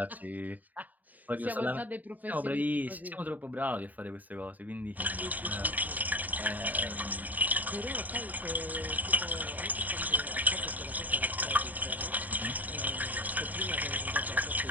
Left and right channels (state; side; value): late; left; 0.080 ms